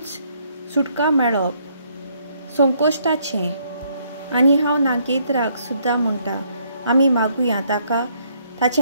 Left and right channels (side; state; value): both; inverted; correlation -0.70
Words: सुटका मेळप संकोश्टाचें. आनी हांव नागेंद्राक सुद्दां म्हणटा आमी मागुया ताका